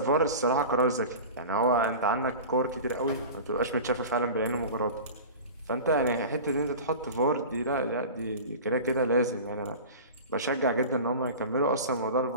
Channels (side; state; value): both; inverted; correlation -0.34